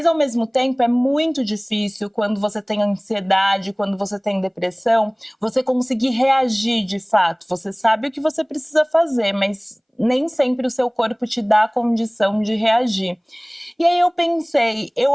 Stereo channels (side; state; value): both; identical; correlation 1.00